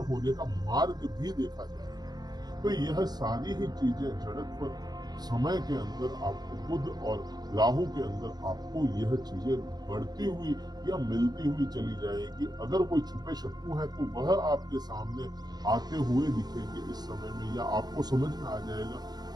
होने का मार्ग भी देखा जाएगा। तो यह सारी ही चीजें जड़त्व समय के अंदर आपको बुध और राहु के अंदर आपको यह चीजें बढ़ती हुई या मिलती हुई चली जाएगी। अगर कोई छुपे शत्रु है तो वह आपके सामने आते हुए दिखेंगे इस समय में, या आपको समझ में आ जाएगा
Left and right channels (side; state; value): left; late; 0.20 ms